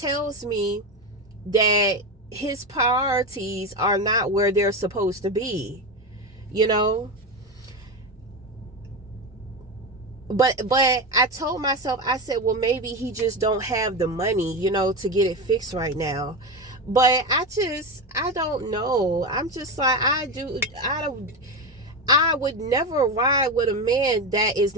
me that his priorities are not where they're supposed to be, But I told myself, I said, well, maybe he just don't have the money, to get it fixed right now. But I don't know. I'm just like, I would never ride with a man that is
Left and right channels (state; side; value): normal; both; correlation 0.17